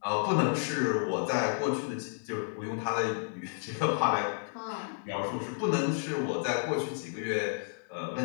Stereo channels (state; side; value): silent; right; digital silence